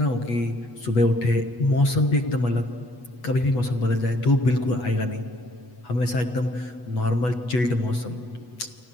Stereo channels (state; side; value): late; right; 8.2 ms